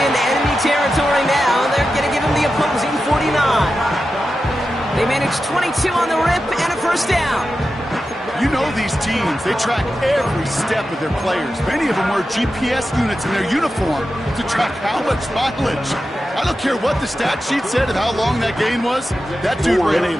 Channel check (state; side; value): normal; both; correlation 0.91